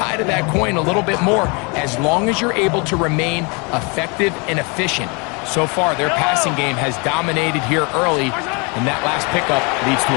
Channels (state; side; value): quieter; right; 31.2 dB